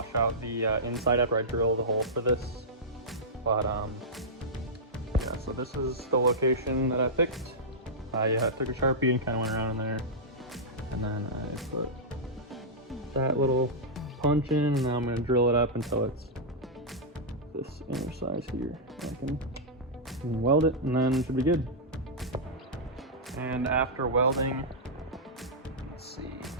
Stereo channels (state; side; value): normal; both; correlation -0.10